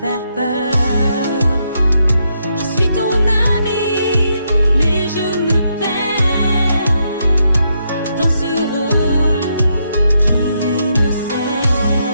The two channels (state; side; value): inverted; both; correlation -0.79